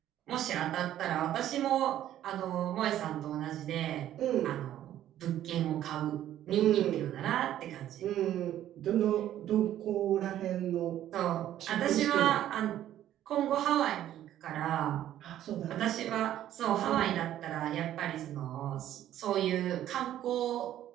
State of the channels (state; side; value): quieter; left; 12.1 dB